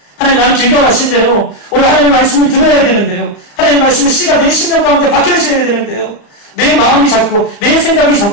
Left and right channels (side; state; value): right; late; 34 ms